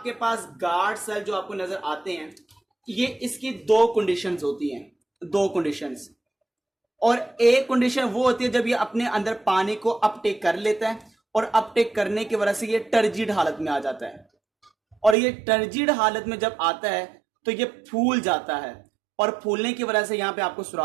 पास गार्ड सेल जो आपको नजर आते हैं, ये इसकी दो कंडीशंस होती हैं, दो कंडीशंस। और एक कंडीशन वो होती है जब ये अपने अंदर पानी को अपटेक कर लेता है, और अपटेक करने की वजह से ये टर्जिड हालत में आ जाता है। और ये टर्जिड हालत में जब आता है तो ये फूल जाता है, और फूलने की वजह से यहां पे आपको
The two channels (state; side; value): drops out; left; at 15.2 s